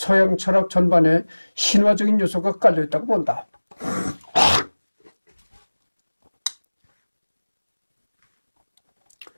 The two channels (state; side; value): inverted; both; correlation -1.00